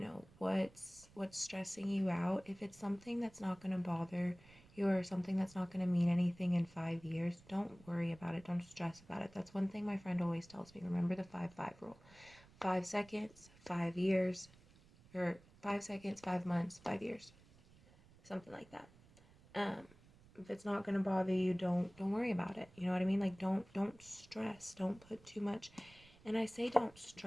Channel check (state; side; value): noise; right; rumble, 25 dB below the sound